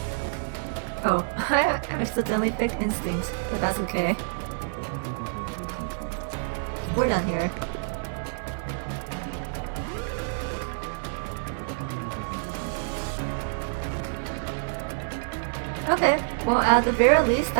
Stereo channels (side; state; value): left; silent; digital silence